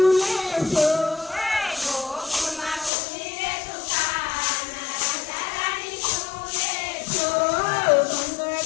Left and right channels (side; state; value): right; drops out; at 2.9 s